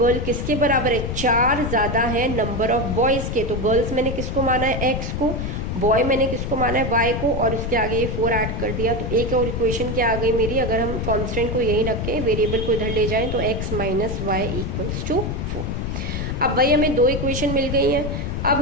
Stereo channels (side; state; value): left; noise; rumble, 3 dB below the sound